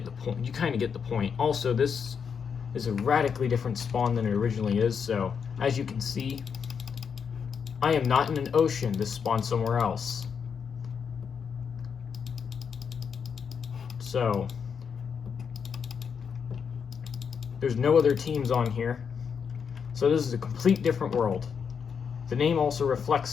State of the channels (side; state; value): right; quieter; 6.6 dB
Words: the point. You kind of get the point. Also, this is a radically different spawn than it originally is, so as you can see, I am not in an ocean. This spawned somewhere else. So there's no other teams on here. So this is a complete different world. The name also